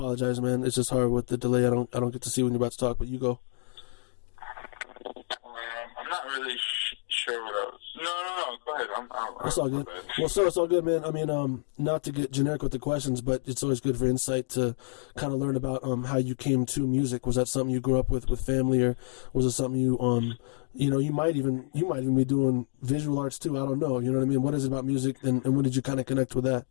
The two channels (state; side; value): silent; right; digital silence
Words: man. It's just hard with the delay. I don't get to see when you're about to talk, but you go. I'm not really sure what I was No. Go ahead. That's all good. Well, so it's all good, man. I mean, not to get generic with the questions, but it's always good for insight to kind of learn about how you came to music. Was that something you grew up with family, or was it something you you might even be doing visual arts too? I don't know. You know what I mean? What is it about music, and when did you kind of connect with that?